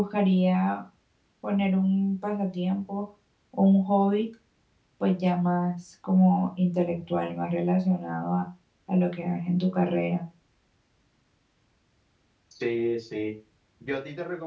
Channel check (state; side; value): identical; both; correlation 1.00